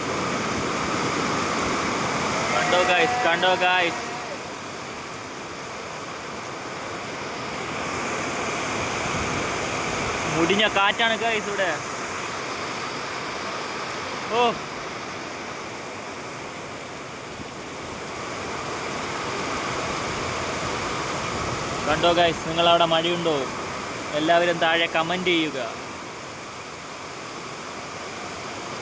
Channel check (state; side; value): identical; both; correlation 1.00